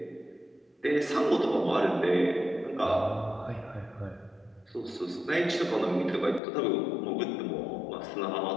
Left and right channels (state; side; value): drops out; right; at 6.4 s